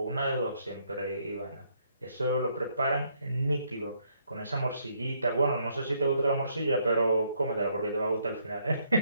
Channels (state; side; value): inverted; both; correlation -0.71